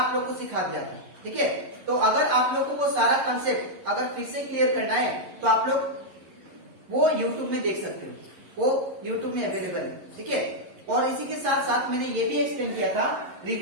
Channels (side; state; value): left; late; 11 ms